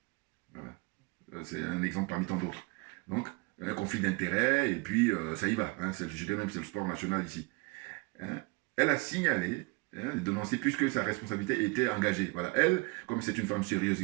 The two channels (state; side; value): quieter; left; 27.1 dB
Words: Voilà. C'est un exemple parmi tant d'autres. Donc, un conflit d'intérêts, et puis ça y va. Hein, je dirais même que c'est le sport national ici. Hein, elle a signalé, hein, dénoncé, puisque sa responsabilité était engagée. Voilà. Elle, comme c'est une femme sérieuse